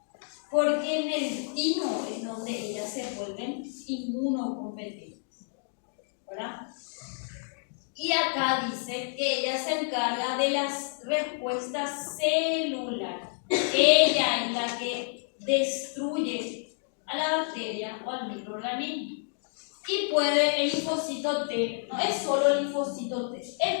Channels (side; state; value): right; silent; 58 dB below the other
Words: porque en el timo es donde ellas se vuelven inmunocompetentes, ¿verdad? Y acá dice que ella se encarga de las respuestas celulares. Ella es la que destruye a la bacteria o al microorganismo. Y puede, el linfocito T, no es solo el linfocito T,